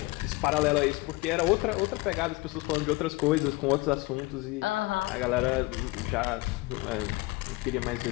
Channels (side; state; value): right; quieter; 22.1 dB